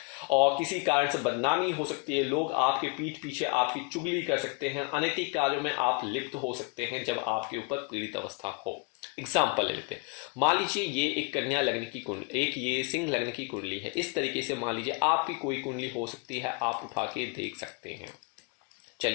और किसी कारण से बदनामी हो सकती है, लोग आपके पीठ पीछे आपकी चुगली कर सकते हैं, अनैतिक कार्यों में आप लिप्त हो सकते हैं जब आपके ऊपर पीड़ित अवस्था हो। एग्जाम्पल ले लेते हैं, मान लीजिए ये एक कन्या लग्न की कुंडली, एक ये सिंह लग्न की कुंडली है। इस तरीके से मान लीजिए आपकी कोई कुंडली हो सकती है, आप उठा के देख सकते हैं।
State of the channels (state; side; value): quieter; right; 30.3 dB